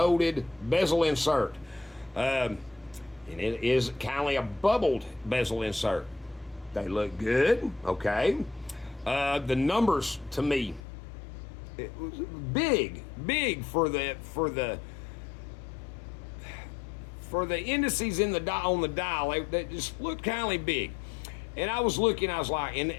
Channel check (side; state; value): right; drops out; at 10.8 s